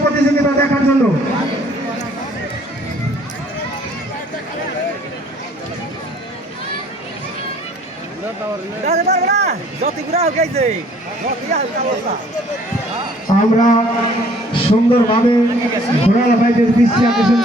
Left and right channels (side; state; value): both; normal; correlation 0.57